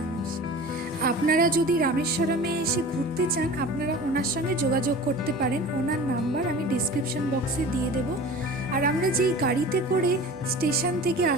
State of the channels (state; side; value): normal; both; correlation 0.38